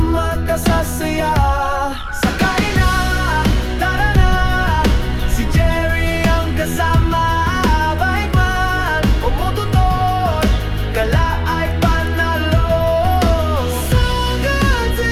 ka sa saya. Sakay na, tara na, si Jerry ang kasama. Bike man, umututor, gala ay panalo. Sa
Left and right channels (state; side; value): identical; both; correlation 1.00